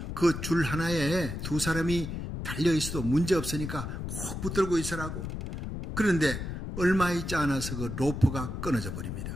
그 줄 하나에 두 사람이 달려 있어도 문제 없으니까 꼭 붙들고 있으라고. 그런데 얼마 있지 않아서 그 로프가 끊어져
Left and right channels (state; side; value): noise; left; rumble, 6 dB below the sound